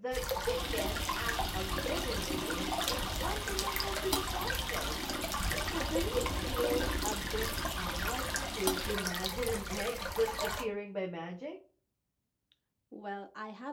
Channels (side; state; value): both; identical; correlation 1.00